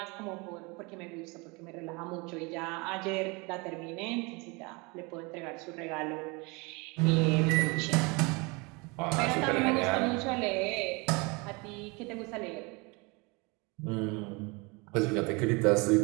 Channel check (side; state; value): left; quieter; 27.8 dB